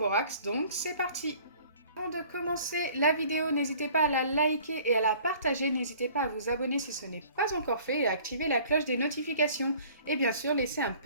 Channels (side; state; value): both; inverted; correlation -0.51